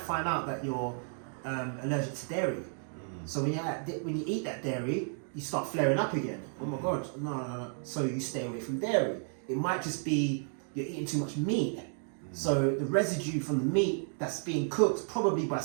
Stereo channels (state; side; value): silent; left; 55 dB below the other